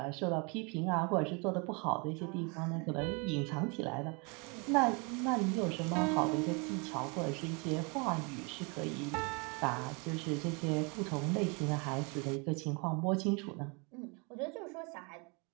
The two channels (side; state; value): left; quieter; 31.8 dB